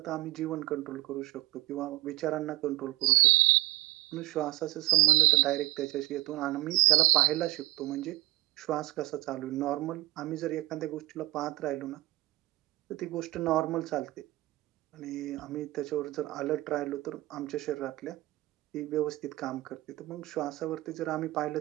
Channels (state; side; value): quieter; left; 18.6 dB